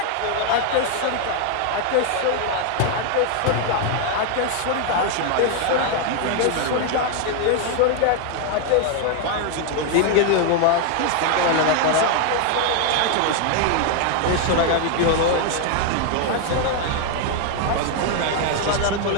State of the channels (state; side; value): different; both; correlation 0.00